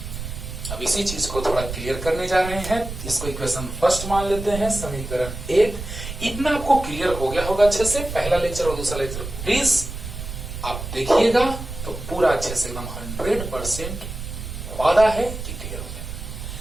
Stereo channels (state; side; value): noise; right; rumble, 8 dB below the sound